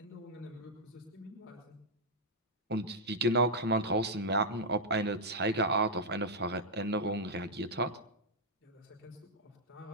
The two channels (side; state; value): both; normal; correlation -0.06